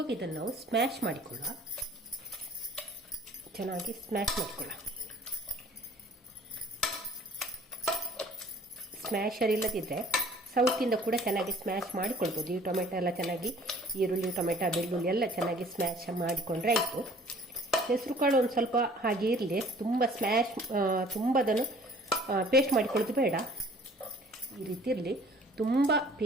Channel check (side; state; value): both; normal; correlation 0.53